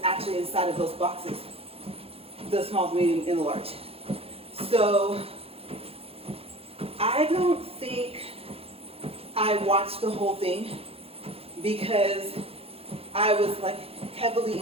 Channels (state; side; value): late; left; 0.28 ms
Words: actually inside of those boxes, the small, medium, and the large. So I don't think I watched the whole thing because I was like heavily